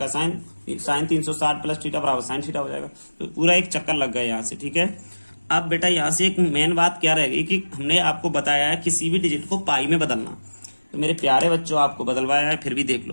साइन 360 प्लस थीटा बराबर साइन थीटा हो जाएगा। तो पूरा एक चक्कर लग गया यहाँ से, ठीक है। अब बेटा यहाँ से एक मेन बात क्या रहेगी कि हमने आपको बताया है किसी भी डिजिट को पाई में बदलना, तो मेरे प्यारे बच्चों आपको बदलवाया है, फिर भी देख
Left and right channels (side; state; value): both; inverted; correlation -1.00